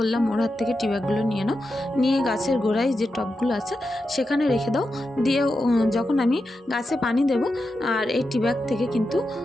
ওর হাত থেকে টি ব্যাগগুলো নিয়ে নাও, নিয়ে গাছের গোড়ায় যে টবগুলো আছে সেখানে রেখে দাও, দিয়ে যখন আমি গাছে পানি দেব আর এই টি ব্যাগ থেকে কিন্তু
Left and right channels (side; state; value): both; normal; correlation 0.89